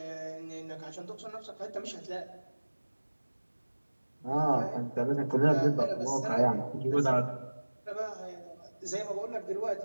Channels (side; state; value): both; inverted; correlation -1.00